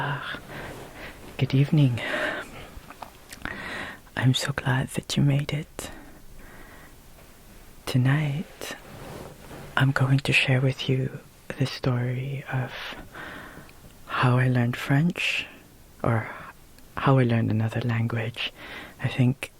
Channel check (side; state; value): both; identical; correlation 1.00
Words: good evening. I'm so glad that you made it. Tonight, I'm going to share with you the story of how I learned French, or how I learned another language. I think